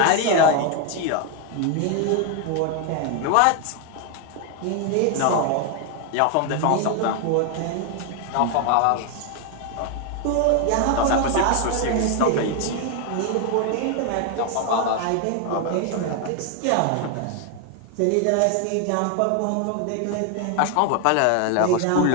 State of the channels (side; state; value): both; different; correlation 0.01